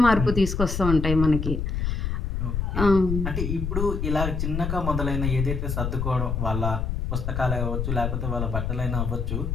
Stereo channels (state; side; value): noise; left; rumble, 1 dB below the sound